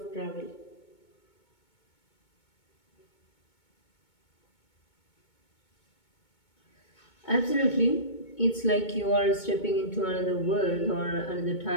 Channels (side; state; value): right; late; 2.2 ms